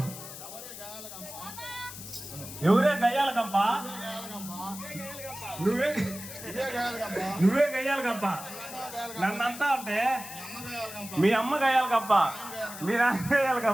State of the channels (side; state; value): left; noise; hiss, 12 dB below the sound